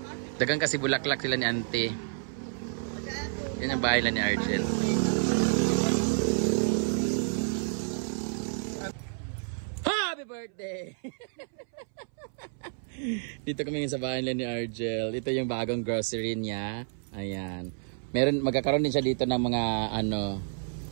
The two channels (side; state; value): left; silent; 58 dB below the other